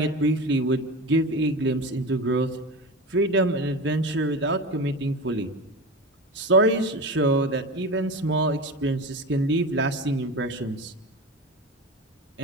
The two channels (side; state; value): both; normal; correlation 0.27